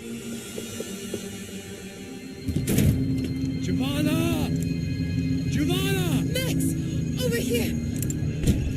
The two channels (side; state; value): both; identical; correlation 1.00